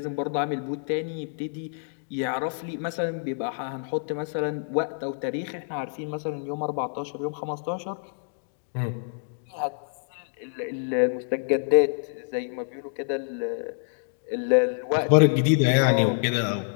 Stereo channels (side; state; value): right; silent; digital silence